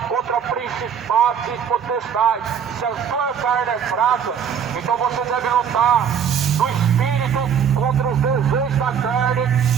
contra principados e potestades. Se a sua carne é fraca, então você deve lutar no espírito contra os desejos da carne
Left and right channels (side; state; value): left; quieter; 7.8 dB